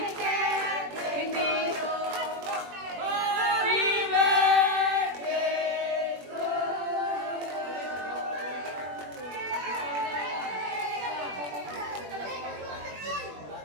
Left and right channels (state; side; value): late; left; 21 ms